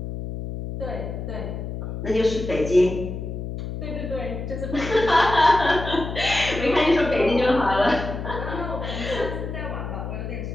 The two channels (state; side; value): noise; left; hum, 6 dB below the sound